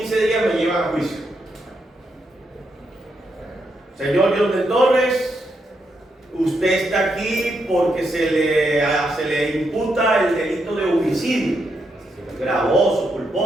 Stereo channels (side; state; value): both; normal; correlation 0.81